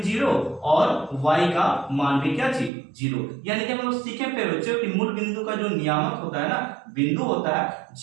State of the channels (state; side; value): drops out; left; at 2.7 s